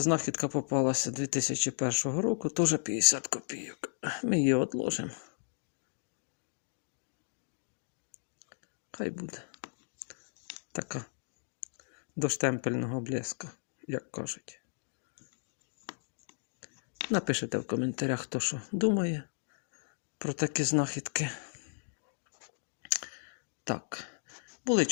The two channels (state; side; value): silent; right; digital silence